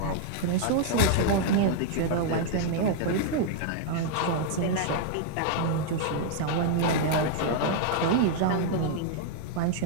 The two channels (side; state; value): both; different; correlation -0.01